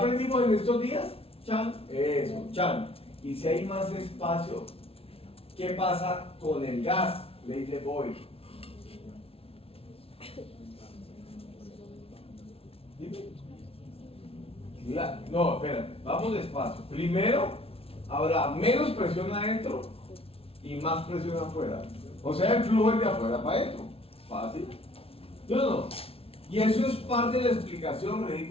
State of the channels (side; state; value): right; late; 0.27 ms